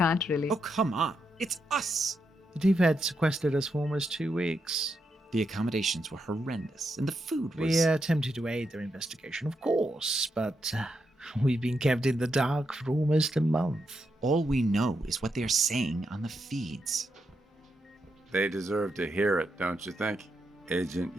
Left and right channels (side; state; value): both; normal; correlation 0.83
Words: really. Oh, come on. It's us! The T-Fed sequestered us for almost 2 weeks. The accommodations were horrendous, and the food was... We attempted to aid their investigation, of course, but We've been kept in the dark for almost a month. All we know is what they're saying on the feeds. They deserve to hear it, don't you think, Agent